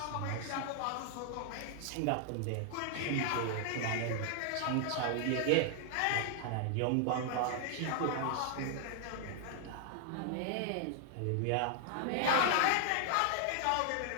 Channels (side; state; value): both; different; correlation 0.00